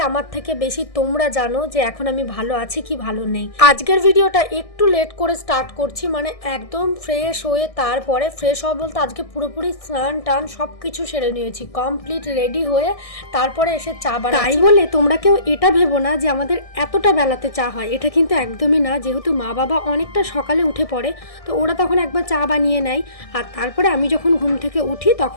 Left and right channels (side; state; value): right; late; 1.6 ms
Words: আমার থেকে বেশি তোমরা জানো যে এখন আমি ভালো আছি কি ভালো নেই। আজকের ভিডিওটা একটু লেট করে স্টার্ট করছি, মানে একদম ফ্রেশ হয়ে তারপরে ফ্রেশ হওয়া বলতে আজকে পুরোপুরি স্নান টান সব কিছু সেরে নিয়েছি, কমপ্লিট রেডি হয়ে তারপরে এসে চা বানাচ্ছি। তাই বলে তোমরা কেউ এটা ভেবো না যে আমাদের এতটা বেলাতে চা হয়, এটা কিন্তু একদমই না। যেহেতু মা বাবা অনেকটা সকালে উঠে পড়ে, তো ওরা তখন একবার চা বানিয়ে নেয়, আর তারপরে আমি যখন ঘুম থেকে উঠি